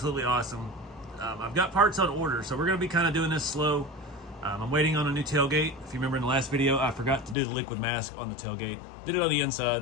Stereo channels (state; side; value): drops out; right; at 7.4 s